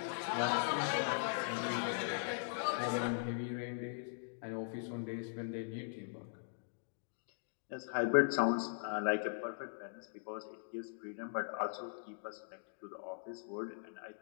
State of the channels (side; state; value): right; silent; digital silence